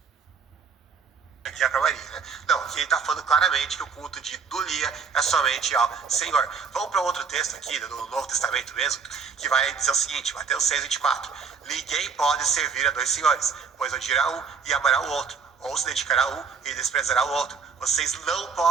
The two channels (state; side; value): quieter; left; 5.7 dB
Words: Aqui é para Maria, né? Não, aqui ele está falando claramente que o culto de Dulia é somente ao Senhor. Vamos para outro texto aqui, do Novo Testamento mesmo, que vai dizer o seguinte, Mateus 6,24. Ninguém pode servir a dois senhores, pois odiará um e amará o outro, ou se dedicará a um e desprezará o outro. Vocês não